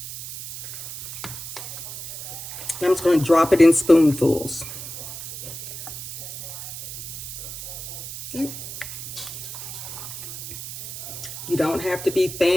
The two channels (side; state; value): right; noise; hiss, 8 dB below the sound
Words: I'm just going to drop it in spoonfuls. You don't have to be